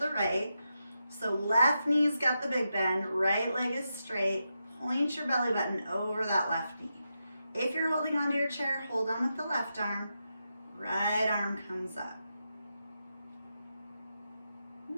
right. So left knee's got the big bend, right leg is straight. Point your belly button over that left knee. If you're holding onto your chair, hold on with the left arm. Right arm comes up.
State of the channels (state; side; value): inverted; both; correlation -0.87